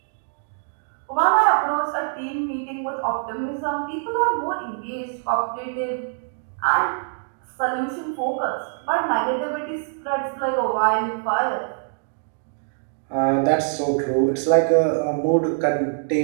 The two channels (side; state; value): left; silent; digital silence